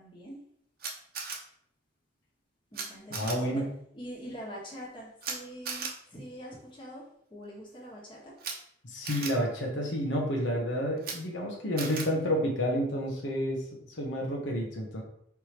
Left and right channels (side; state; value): both; normal; correlation 0.37